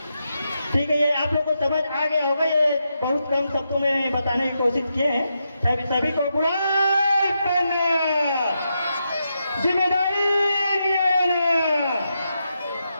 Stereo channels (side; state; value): both; inverted; correlation -0.85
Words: ठीक है, ये आप लोगों को समझ आ गया होगा। ये बहुत कम शब्दों में बताने की कोशिश किए हैं। सभी को बुलाई करना, जिम्मेदारी लेना,